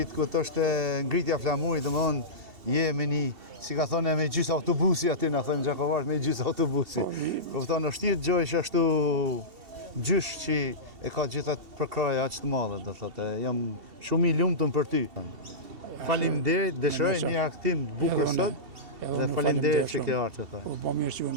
të këtë është ngritja flamurit, dhe më thonë, je me një, si ka thonë, me gjysë autobusi aty, në thëmë Gjakovash, me gjysë autobusi. Këfton, është tjetë gjojsh ashtu gjysh që e ka gjithat përkraja aq të madhe, dhe thotë, jam shumë i lumtun për ty. Faleminderit, dëshiroj një aktim të bukur sot, dhe faleminderit që ke ardhur. Po mirë që u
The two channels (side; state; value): left; late; 2.7 ms